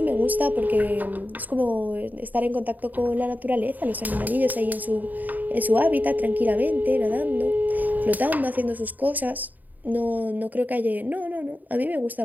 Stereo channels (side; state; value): left; late; 0.083 ms